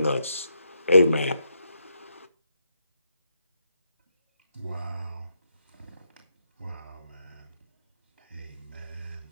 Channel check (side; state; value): both; inverted; correlation -0.80